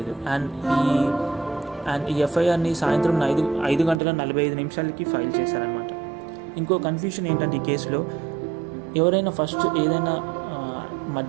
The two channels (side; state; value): left; drops out; at 4.0 s